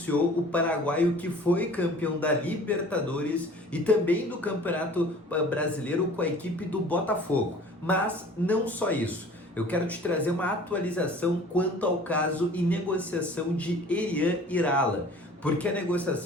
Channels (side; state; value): both; normal; correlation 0.47